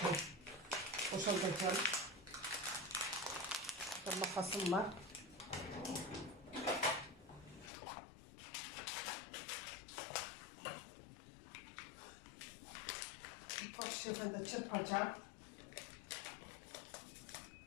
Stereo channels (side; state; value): right; drops out; at 7.7 s